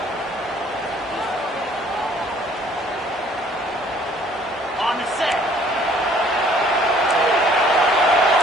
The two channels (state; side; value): normal; both; correlation 0.58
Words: On the set.